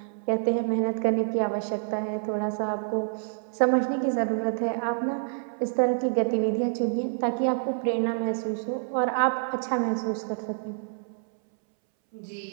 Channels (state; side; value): silent; left; 60 dB below the other